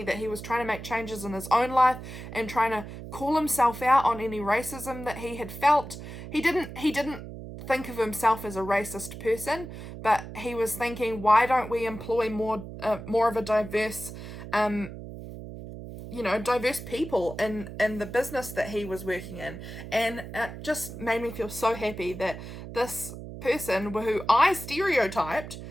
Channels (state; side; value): noise; right; hum, 11 dB below the sound